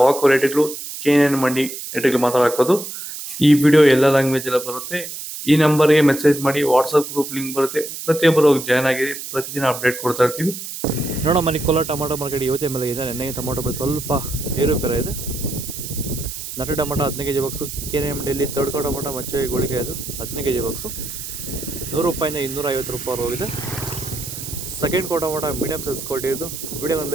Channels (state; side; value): noise; right; hiss, 9 dB below the sound